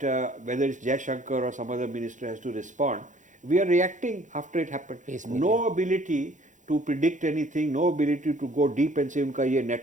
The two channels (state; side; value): late; left; 0.36 ms